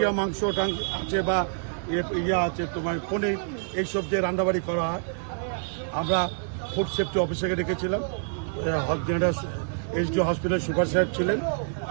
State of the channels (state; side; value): silent; left; 60 dB below the other